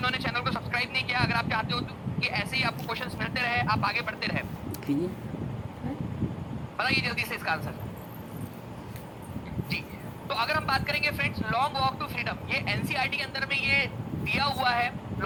चैनल को सब्सक्राइब नहीं किया। अगर आप चाहते हो कि ऐसे ही आपको क्वेश्चंस मिलते रहे, आप आगे बढ़ते रहे, बताइए जल्दी से इसका आंसर जी। तो अगर हम बात करेंगे friends long walk to freedom, ये एनसीईआरटी के अंदर में ये दिया हुआ है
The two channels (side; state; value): both; identical; correlation 1.00